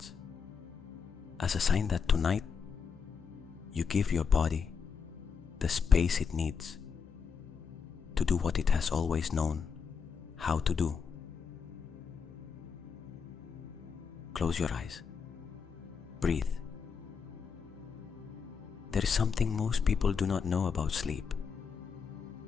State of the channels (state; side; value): quieter; right; 6.0 dB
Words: as a sign that tonight you give your body the space it needs to do what it has always known how to do. Close your eyes. Breathe. There is something most people do not know about sleep.